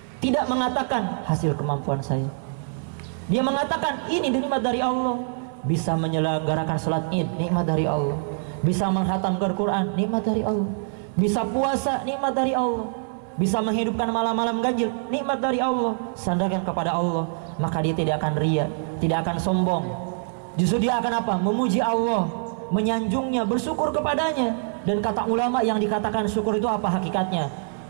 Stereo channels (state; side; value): silent; left; 62 dB below the other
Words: Tidak mengatakan hasil kemampuan saya. Dia mengatakan ini nikmat dari Allah. Bisa menyelenggarakan salat Id, nikmat dari Allah. Bisa menghatamkan Quran, nikmat dari Allah. Bisa puasa, nikmat dari Allah. Bisa menghidupkan malam-malam ganjil, nikmat dari Allah. Sandarkan kepada Allah, maka dia tidak akan ria, tidak akan sombong. Justru dia akan apa? Memuji Allah, menyanjungnya, bersyukur kepadanya. Dan kata ulama, yang dikatakan syukur itu apa hakikatnya?